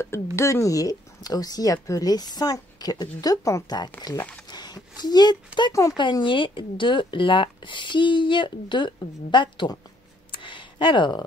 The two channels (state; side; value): normal; both; correlation 0.67